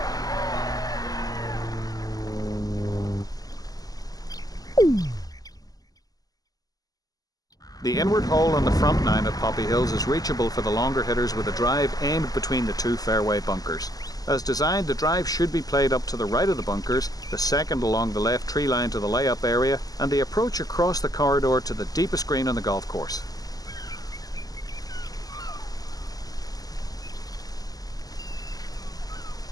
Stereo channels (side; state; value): right; late; 0.18 ms